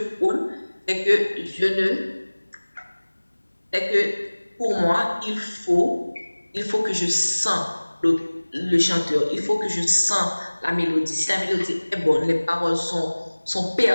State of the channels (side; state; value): both; inverted; correlation -1.00